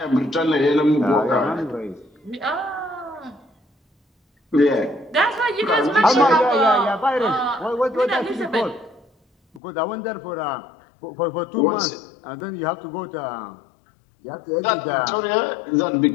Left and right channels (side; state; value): right; drops out; at 9.6 s